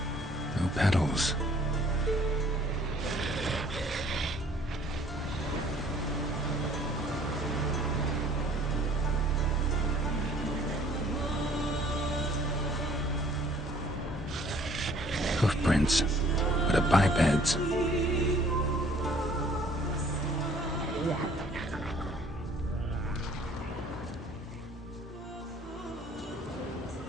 No petals. Hoofprints, but a biped's.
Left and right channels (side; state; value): both; normal; correlation 0.56